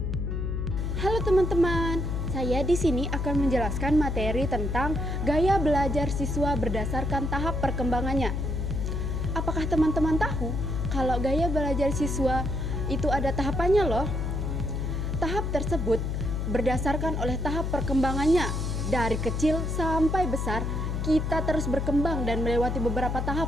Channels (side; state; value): left; noise; hum, 1 dB below the sound